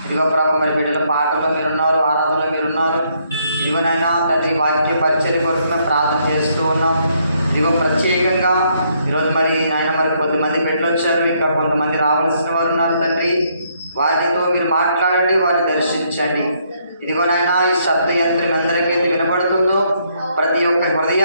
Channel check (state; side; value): inverted; both; correlation -0.71